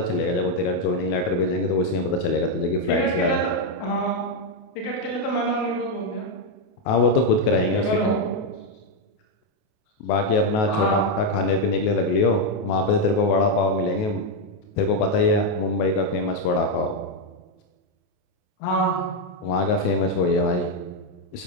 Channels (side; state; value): right; late; 28 ms